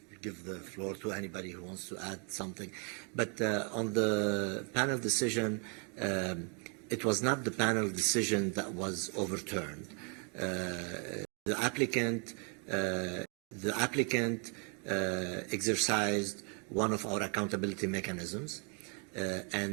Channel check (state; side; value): quieter; left; 37.3 dB